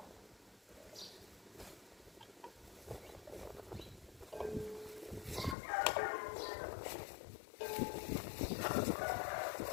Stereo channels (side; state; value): right; drops out; at 5.6 s